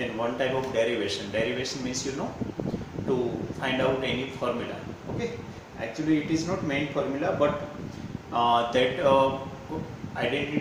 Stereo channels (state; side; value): identical; both; correlation 1.00